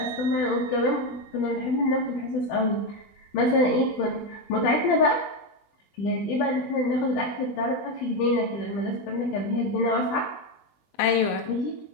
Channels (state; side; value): late; right; 20 ms